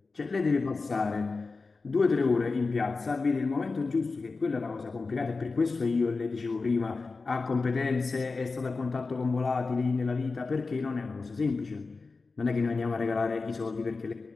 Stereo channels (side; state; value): right; quieter; 4.0 dB